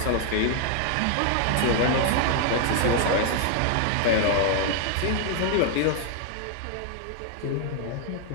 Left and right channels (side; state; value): both; different; correlation 0.00